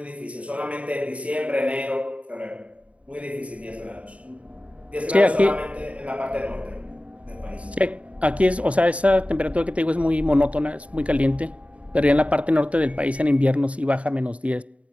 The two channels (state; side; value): late; left; 0.064 ms